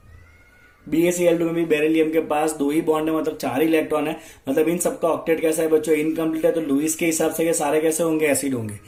BaCl2 में भी बेरिलियम के पास 2 ही बॉन्ड है, मतलब 4 इलेक्ट्रॉन है। मतलब इन सबका ऑक्टेट कैसा है बच्चों? इनकम्प्लीट है। तो लुईस के हिसाब से ये सारे कैसे होंगे? एसिड होंगे।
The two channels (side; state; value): both; identical; correlation 1.00